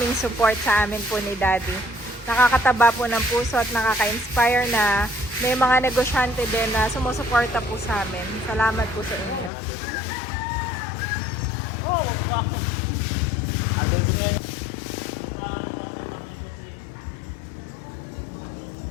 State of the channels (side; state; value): right; drops out; at 9.5 s